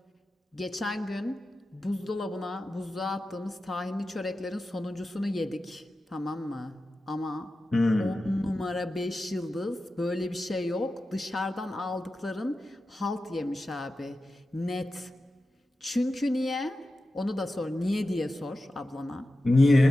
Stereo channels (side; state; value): both; normal; correlation 0.93